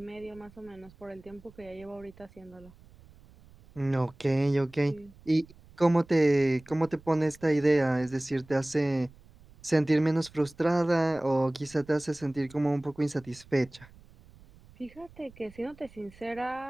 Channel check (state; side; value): noise; right; rumble, 24 dB below the sound